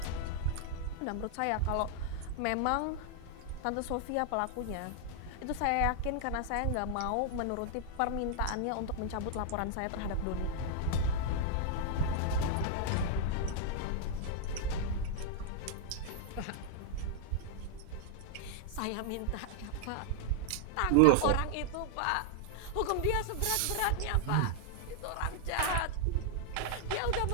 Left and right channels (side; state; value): both; different; correlation 0.00